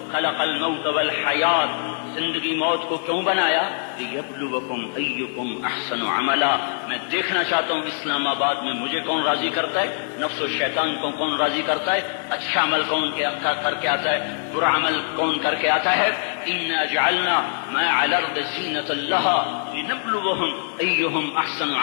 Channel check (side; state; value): right; silent; digital silence